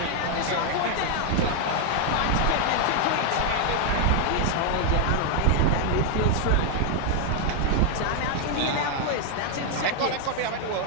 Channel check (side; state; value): both; different; correlation 0.00